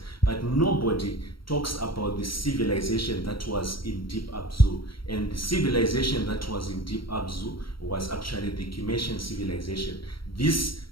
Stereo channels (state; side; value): late; right; 0.74 ms